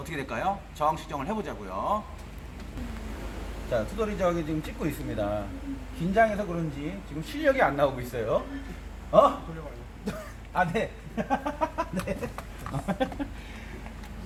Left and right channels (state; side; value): identical; both; correlation 1.00